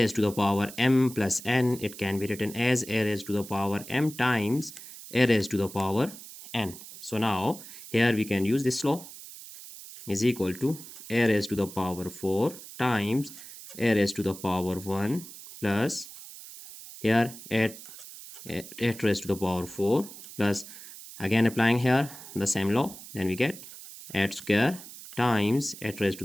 to the power m plus n, it can be written as a raised to the power m times a raised to the power n. So now here we can use this law, is equal to a raised to the power 4 times a raised to the power 1 plus here 8 raised to the power 4 plus, again applying here the same law, then we get 8 square times 8 raised to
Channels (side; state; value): right; noise; hiss, 15 dB below the sound